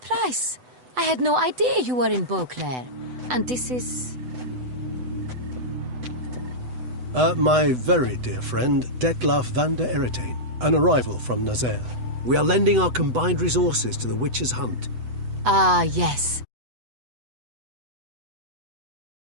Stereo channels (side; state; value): left; late; 8.0 ms